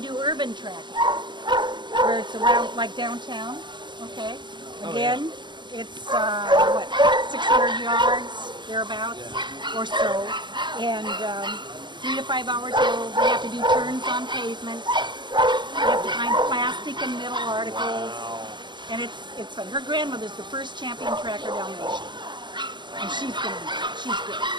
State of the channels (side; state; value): left; late; 0.22 ms